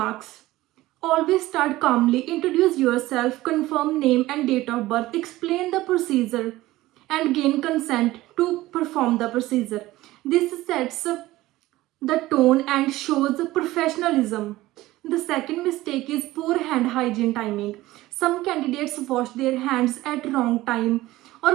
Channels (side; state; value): left; quieter; 17.4 dB